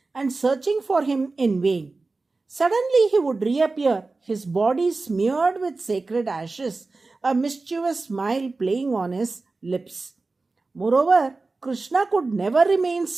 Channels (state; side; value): quieter; left; 3.6 dB